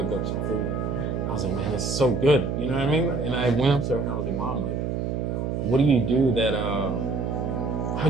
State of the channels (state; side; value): noise; right; hum, 1 dB below the sound